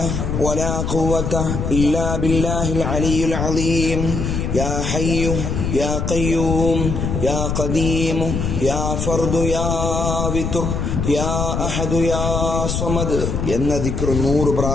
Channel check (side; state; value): left; noise; rumble, 2 dB below the sound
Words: ولا قوة إلا بالله العلي العظيم. يا حي يا قيوم يا قديم يا فرد يا وتر يا أحد يا صمد എന്ന ദിക്ർ 100